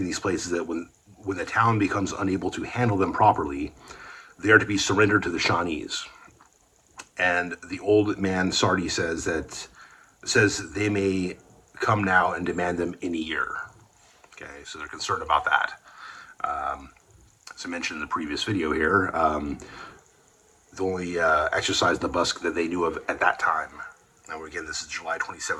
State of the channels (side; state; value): both; identical; correlation 1.00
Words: these plates is that when the town becomes unable to handle them properly, they are to be surrendered to the Shawnees. And the old man Sardi says they may come now and demand them in a year. Okay, so they're concerned about that. As I mentioned in the previous video here, the only exercise the busk that they knew of at that time, now again this is July